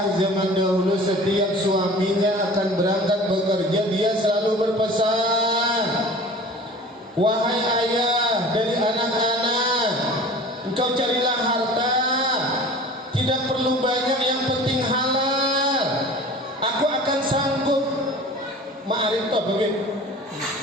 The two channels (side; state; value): both; normal; correlation 0.42